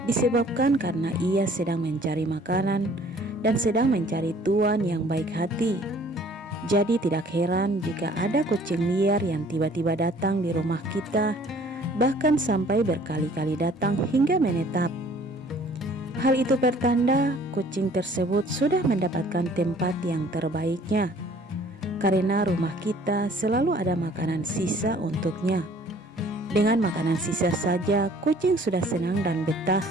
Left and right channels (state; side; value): normal; both; correlation 0.55